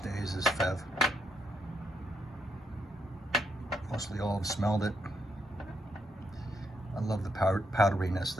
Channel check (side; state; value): both; normal; correlation 0.78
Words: is Fève. Mostly all have smelled it. I love the powderiness